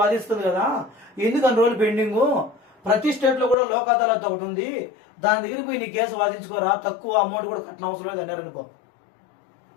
వాదిస్తుంది కదా, ఎందుకు అన్ని రోజులు పెండింగ్, ప్రతి స్టేట్ లో కూడా లోక్ అదాలత్ ఒకటి ఉంది, దాని దగ్గరికి పోయి నీ కేసు వాదించుకోరా, తక్కువ అమౌంట్ కూడా కట్టిన అవసరం లేదు అన్నారు అనుకో.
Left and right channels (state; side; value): drops out; right; at 3.6 s